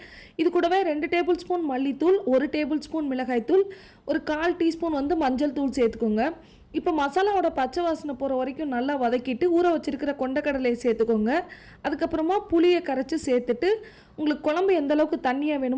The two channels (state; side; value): identical; both; correlation 1.00